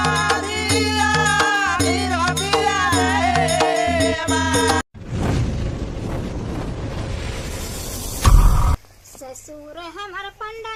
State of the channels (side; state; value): both; identical; correlation 1.00